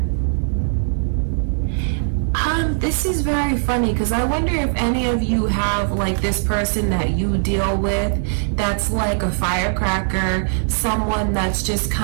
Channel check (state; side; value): silent; left; digital silence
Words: This is very funny because I wonder if any of you have like this person that you deal with that's like a firecracker, someone that's just